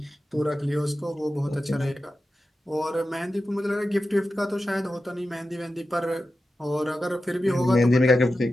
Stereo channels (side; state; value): both; normal; correlation 0.92